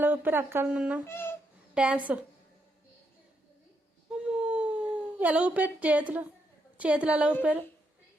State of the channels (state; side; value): normal; both; correlation 0.79